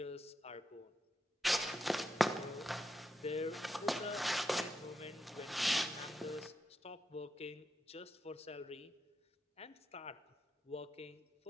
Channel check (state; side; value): normal; both; correlation 0.85